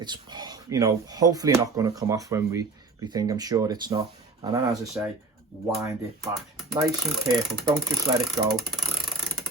you know, hopefully not going to come off when we think. I'm sure it's not. And then, as I say, wind it back. Nice and careful. Don't just let it go.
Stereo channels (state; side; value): quieter; left; 3.6 dB